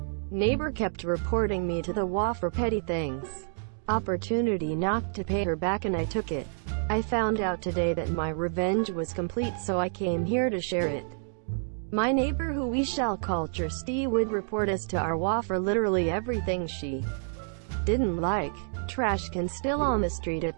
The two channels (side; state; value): left; silent; digital silence